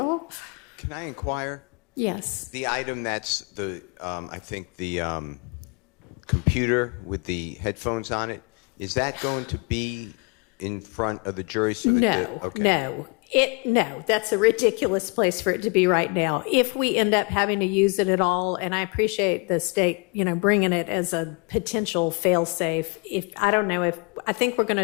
Can I inquire? Yes. The item that's the, I think the computer with the headphones on it, is that going to be in front of the jury? So that No, that's a ridiculous place for it to be right now. If we end up having to use it at all, and I appreciate the state, you know, bringing it as a potential fail-safe. I think we're going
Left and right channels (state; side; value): quieter; right; 31.5 dB